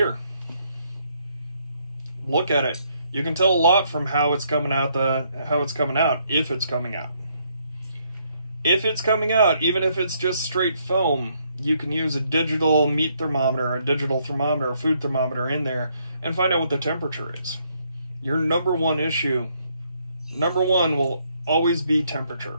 Look at it. You can tell a lot from how it's coming out. If it's coming out. If it's coming out, even if it's just straight foam, you can use a digital meat thermometer, a digital thermometer, a food thermometer in there and find out what the temperature is. Your number one will always be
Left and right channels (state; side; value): inverted; both; correlation -0.72